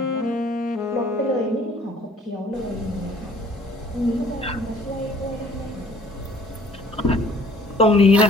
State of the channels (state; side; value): normal; both; correlation 0.55